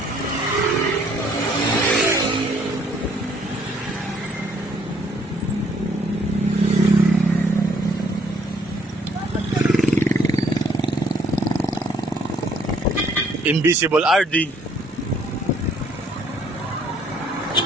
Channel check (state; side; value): normal; both; correlation 0.64